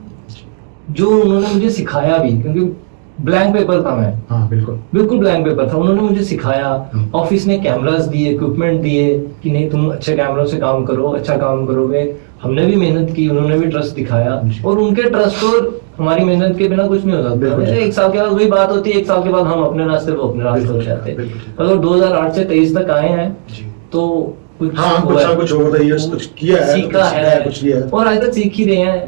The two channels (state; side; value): silent; left; digital silence